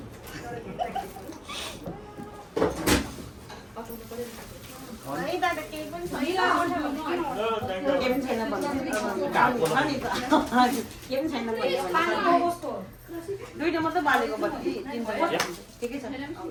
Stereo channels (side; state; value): both; identical; correlation 1.00